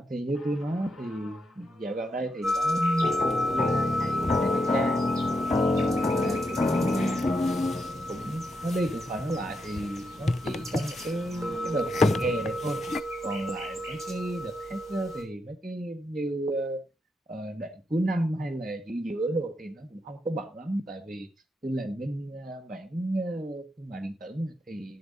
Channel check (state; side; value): normal; both; correlation 0.82